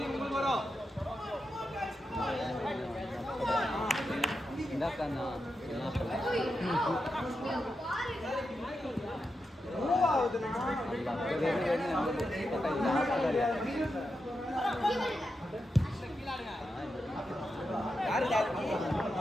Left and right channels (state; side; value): normal; both; correlation 0.87